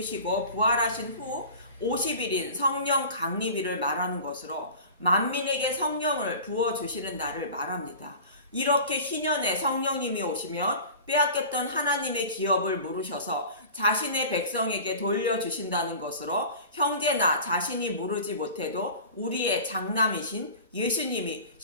부활하신 후 50일인 성령 강림일을 말하는 것으로 만민에게 성령을 부어주시는 날을 말합니다. 이렇게 희년에 성령님이 오시면 빼앗겼던 하나님의 기업을 물으셔서 자신의 백성에게 돌려주신다는 것으로 형제나 자신이 물으지 못해도 우리의 장남이신 예수님이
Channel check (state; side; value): inverted; both; correlation -0.38